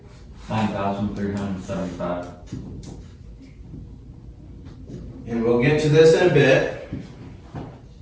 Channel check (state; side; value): identical; both; correlation 1.00